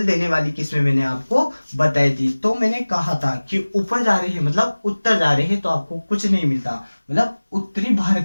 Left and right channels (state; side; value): inverted; both; correlation -1.00